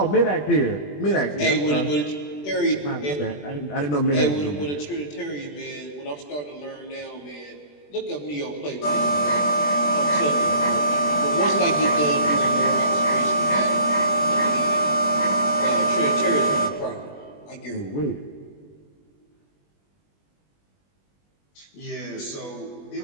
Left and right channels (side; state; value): right; late; 20 ms